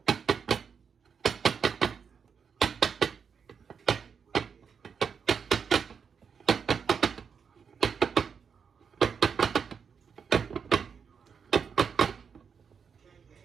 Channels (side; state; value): left; quieter; 6.4 dB